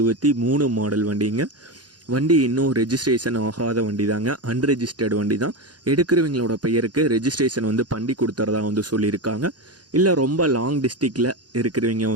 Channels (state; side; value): late; left; 0.69 ms